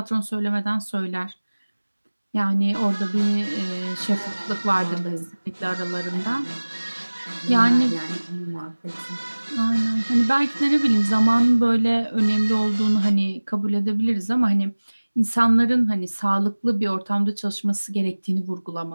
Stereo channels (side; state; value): both; inverted; correlation -1.00